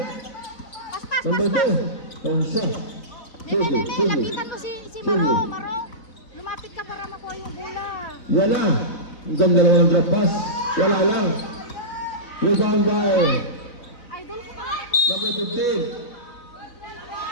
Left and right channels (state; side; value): late; right; 4.0 ms